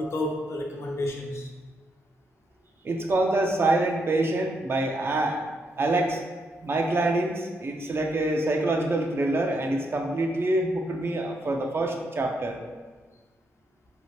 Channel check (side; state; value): both; normal; correlation 0.78